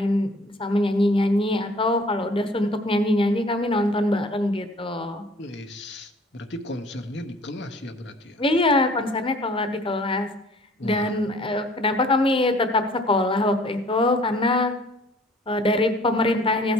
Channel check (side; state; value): both; normal; correlation 0.53